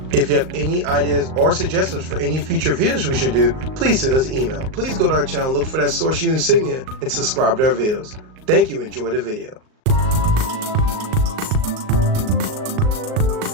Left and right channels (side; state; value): left; late; 38 ms